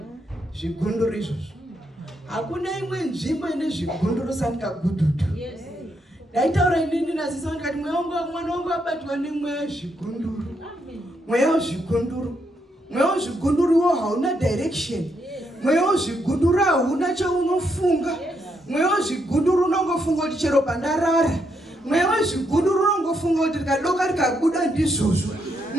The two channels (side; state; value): both; normal; correlation 0.78